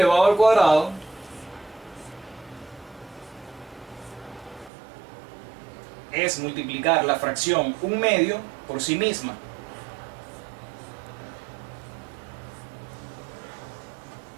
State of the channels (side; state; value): left; drops out; at 4.7 s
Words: al cuadrado es multiplicar la fracción 1/2 por sí misma.